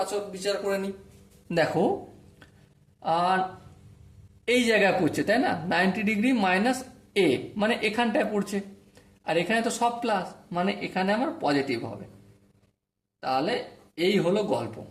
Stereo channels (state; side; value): identical; both; correlation 1.00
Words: আচর বিচার করে নিই। দেখো, আর এই জায়গায় পড়ছে, তাই না? 90 ডিগ্রি মাইনাস এ মানে এখানটায় পড়ছে, আর এখানে তো সব প্লাস, মানে এখানে আমার পজিটিভ হবে। তাহলে এই হলো গল্প।